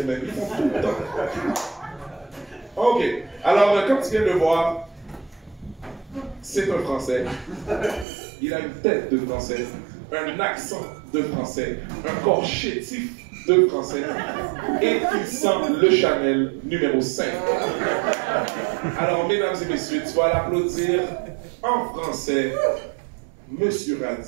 mais ils font tout le temps. OK. Alors, comme tu viens de le voir, c'est un Français. Il a une tête de Français, un accent de Français, un corps chétif de Français, et il sent le Chanel numéro 5. Alors, mesdames et messieurs, tu vas l'applaudir en français, Monsieur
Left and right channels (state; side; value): drops out; left; at 8.1 s